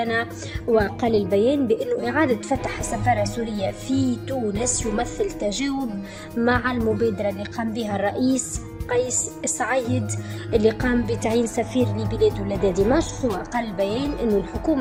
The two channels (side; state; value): both; identical; correlation 1.00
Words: وقال البيان بأنه إعادة فتح السفارة السورية في تونس يمثل تجاوب مع المبادرة اللي قام بها الرئيس قيس سعيد اللي قام بتعيين سفير لبلاده لدى دمشق. وقال البيان أن